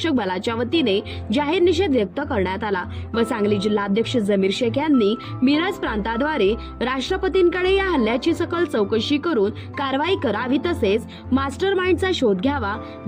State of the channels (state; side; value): identical; both; correlation 1.00